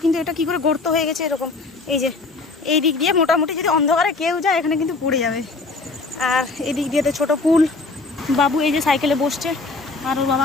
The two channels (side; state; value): right; quieter; 3.7 dB